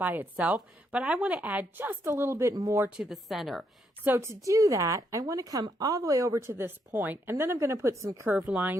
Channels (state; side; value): normal; both; correlation 0.76